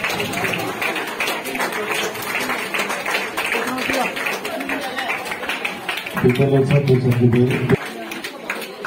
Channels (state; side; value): identical; both; correlation 1.00